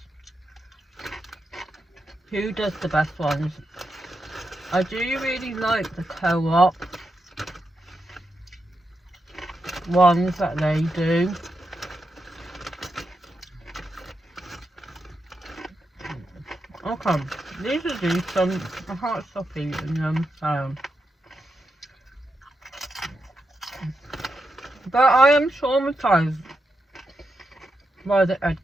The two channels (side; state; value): both; normal; correlation 0.86